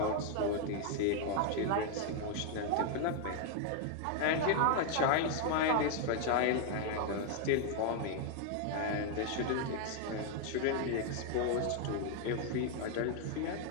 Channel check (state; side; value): different; both; correlation 0.00